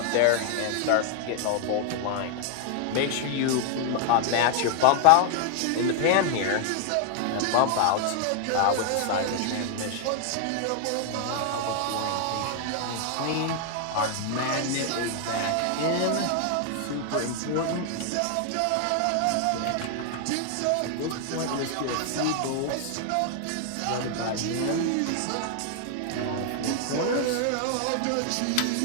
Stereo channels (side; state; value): both; different; correlation 0.00